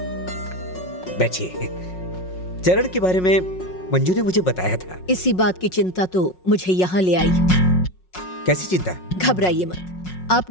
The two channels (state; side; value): late; right; 5.5 ms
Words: बैठिए। चरण के बारे में मंजू ने मुझे बताया था। इसी बात की चिंता तो मुझे यहाँ ले आई। कैसी चिंता? घबराइए मत,